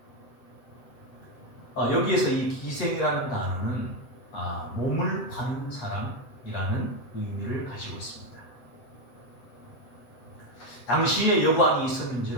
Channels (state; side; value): late; right; 8.0 ms